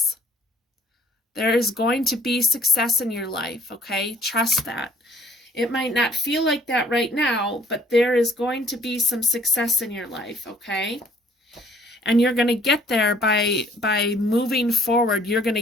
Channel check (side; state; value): both; normal; correlation 0.58